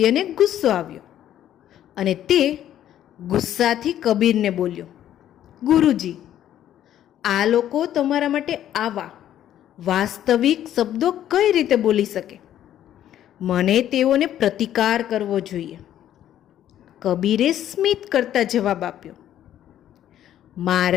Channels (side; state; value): right; quieter; 11.4 dB